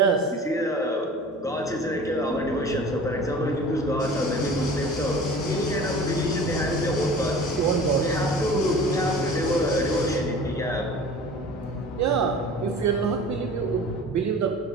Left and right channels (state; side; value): normal; both; correlation 0.41